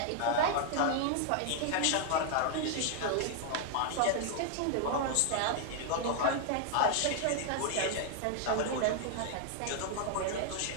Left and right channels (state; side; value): different; both; correlation 0.00